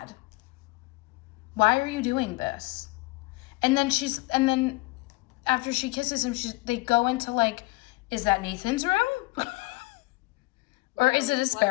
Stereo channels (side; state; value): right; quieter; 23.5 dB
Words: Why are you doing this? And then after she kisses him, they go into like, is that Nathan's room? Or is it a